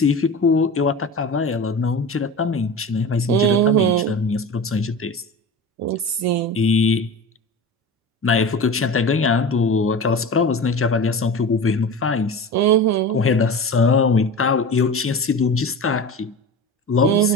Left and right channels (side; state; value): both; normal; correlation 0.31